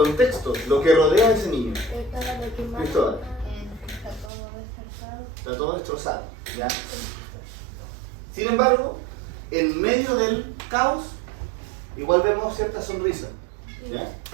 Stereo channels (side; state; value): left; drops out; at 4.3 s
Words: lo que rodea a ese niño. Estaba de quemar. Cristóbal. Está todo descansado. Está todo destrozado, ¿ya? Sin embargo, en medio del caos, igual vemos cierta sonrisa, ¿ya?